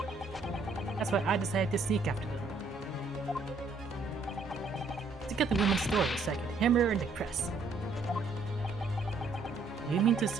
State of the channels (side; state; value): left; quieter; 3.7 dB